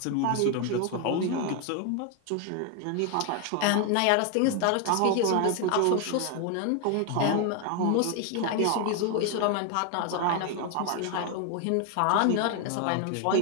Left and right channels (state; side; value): different; both; correlation 0.01